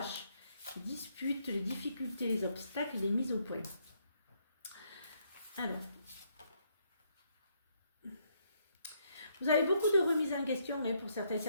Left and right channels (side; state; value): both; inverted; correlation -0.73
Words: les disputes, les difficultés, les obstacles, les mises au point. Alors, vous avez beaucoup de remises en question pour